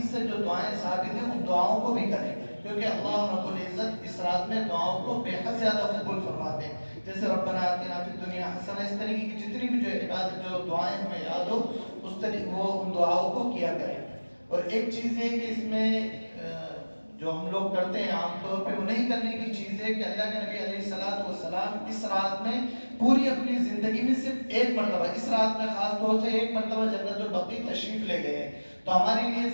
سے جو دعائیں ثابت ہیں ان دعاؤں کو بھی کریں، کیونکہ اللہ رب العزت اس رات میں دعاؤں کو بے حد زیادہ قبول فرماتے ہیں. جیسے ربنا آتنا فی الدنیا حسنہ، اس طریقے کی جتنی بھی جو عبادت جو دعائیں ہمیں یاد ہو اس طریقے وہ ان دعاؤں کو کیا کریں. اور ایک چیز ہے کہ اس میں جو ہم لوگ کرتے ہیں عام طور پہ وہ نہیں کرنے کی چیز ہے کہ اللہ کے نبی علیہ الصلوۃ والسلام اس رات میں پوری اپنی زندگی میں صرف ایک مرتبہ، اس رات میں خاص طور سے ایک مرتبہ جنت البقیع تشریف لے گئے ہیں. تو ہمارے لیے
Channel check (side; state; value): both; inverted; correlation -1.00